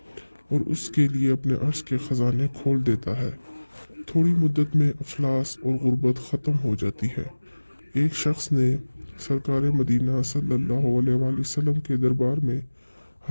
और उसके लिए अपने अर्श के ख़जाने खोल देता है। थोड़ी मुद्दत में अफलास और गुर्बत ख़त्म हो जाती है। एक शख्स ने सरकार मदीना सल्लल्लाहु अलैहि वसल्लम के दरबार में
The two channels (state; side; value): inverted; both; correlation -1.00